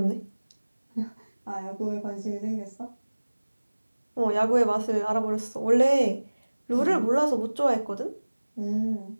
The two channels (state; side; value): inverted; both; correlation -1.00